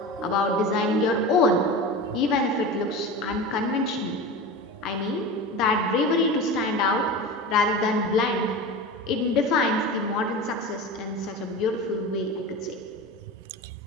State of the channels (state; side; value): normal; both; correlation 0.29